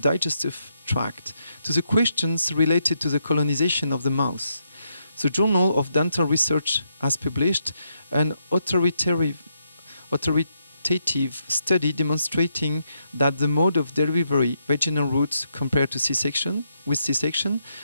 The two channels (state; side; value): inverted; both; correlation -0.79